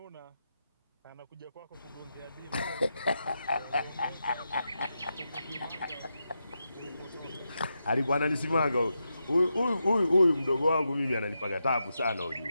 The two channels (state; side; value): inverted; both; correlation -0.87